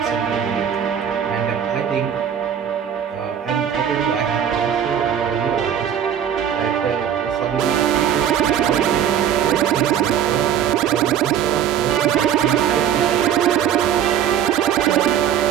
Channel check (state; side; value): quieter; left; 9.2 dB